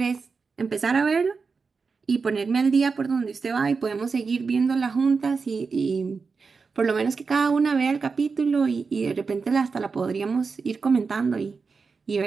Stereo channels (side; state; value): left; quieter; 4.9 dB